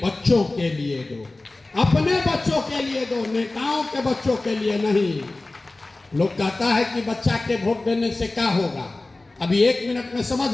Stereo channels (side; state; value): right; quieter; 3.0 dB